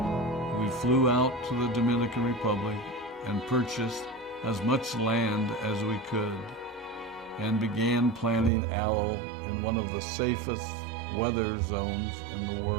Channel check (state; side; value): drops out; left; at 8.5 s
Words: We flew out to the Dominican Republic and purchased as much land as we could and began planting aloe in one of the safest weather zones in the